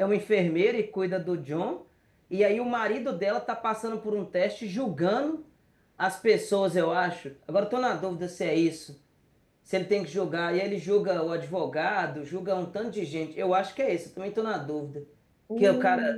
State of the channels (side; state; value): both; identical; correlation 1.00